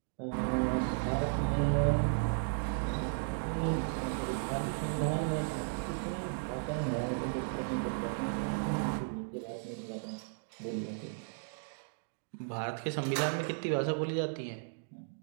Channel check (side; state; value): left; silent; digital silence